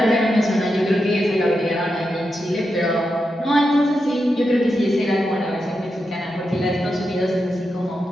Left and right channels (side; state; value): both; normal; correlation 0.87